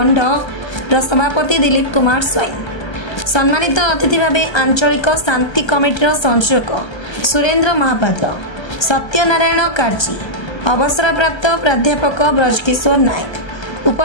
सभापति दिलीप कुमार स्वाई, सम्मानित अतिथि भाव आंचलिक शांति कमिटीर संयोजक सुरेंद्र महापात्र, सत्यनारायण कार्जी, अवसरप्राप्त प्राध्यापक ब्रजकिशोर नायक,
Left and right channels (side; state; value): right; late; 1.3 ms